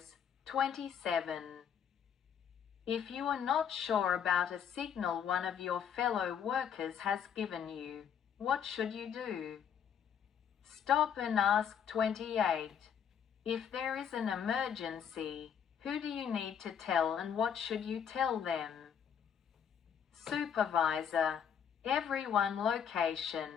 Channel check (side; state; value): right; quieter; 8.1 dB